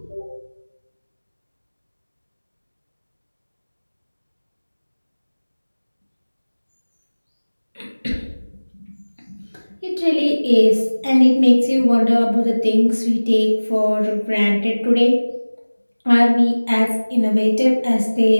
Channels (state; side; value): inverted; both; correlation -1.00